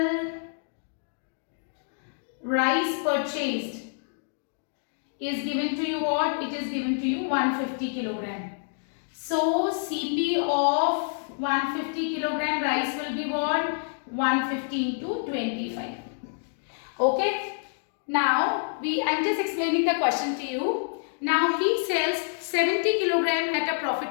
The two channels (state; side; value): silent; right; digital silence